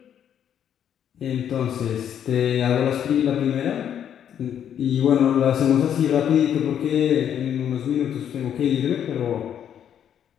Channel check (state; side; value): quieter; right; 9.3 dB